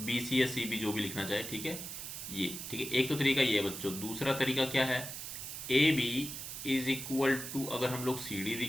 BC या CB जो भी लिखना चाहे। ठीक है, ये ठीक है, एक तो तरीका ये है बच्चों। दूसरा तरीका क्या है, AB इज इक्वल टू, अगर हम लोग CD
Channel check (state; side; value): noise; right; hiss, 7 dB below the sound